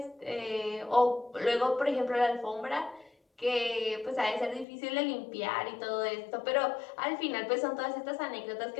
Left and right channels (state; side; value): drops out; right; at 4.7 s